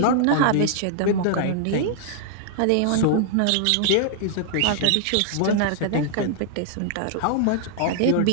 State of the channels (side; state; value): both; different; correlation -0.01